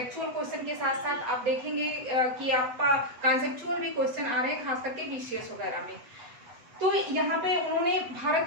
क्वेश्चन के साथ साथ आप देखेंगे कि आपका कॉन्सेप्चुअल भी क्वेश्चन आ रहे हैं, खास करके बीसीएस वगैरह में। तो यहाँ पे उन्होंने भारत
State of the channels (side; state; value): left; late; 8.0 ms